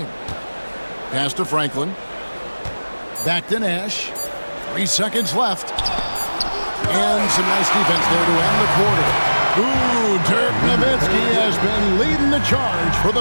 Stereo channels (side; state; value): both; inverted; correlation -1.00